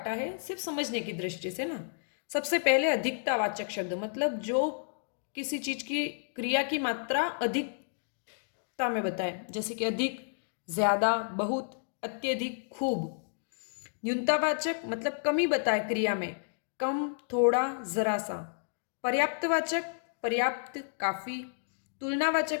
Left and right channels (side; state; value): right; silent; digital silence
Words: है सिर्फ समझने की दृष्टि से ना। सबसे पहले अधिकतावाचक शब्द, मतलब जो किसी चीज की क्रिया की मात्रा अधिकता में बताए, जैसे कि अधिक, ज्यादा, बहुत, अत्यधिक, खूब। न्यूनतावाचक मतलब कमी बताए क्रिया में, कम, थोड़ा, जरा सा। पर्याप्तवाचक पर्याप्त, काफी।